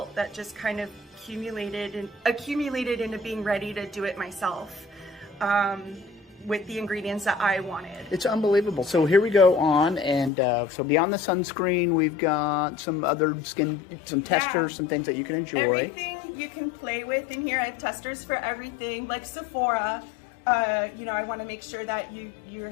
that just kind of accumulated into being ready to do it myself with the ingredients that I wanted. It's unbelievable. So here we go on, and so beyond the sunscreen, we've got some other some testers, some things that you can enjoy. Everything you can play with in here. I have testers for everything, like Sephora. I want to make sure that you're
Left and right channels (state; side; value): drops out; right; at 10.3 s